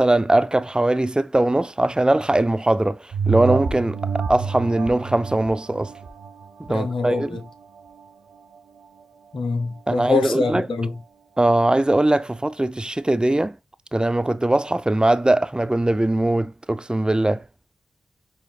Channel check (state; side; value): normal; both; correlation 0.96